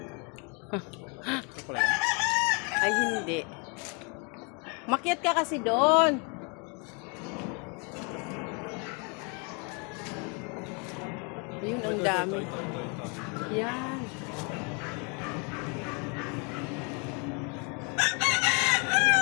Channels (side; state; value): right; quieter; 34.2 dB